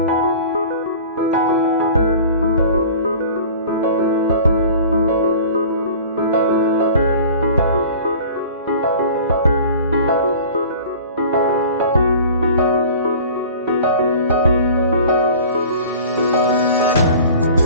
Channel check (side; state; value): both; inverted; correlation -0.43